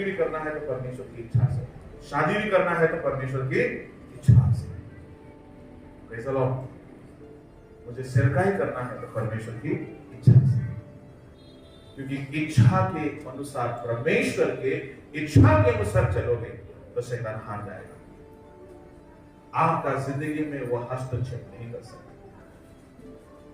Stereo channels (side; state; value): both; identical; correlation 1.00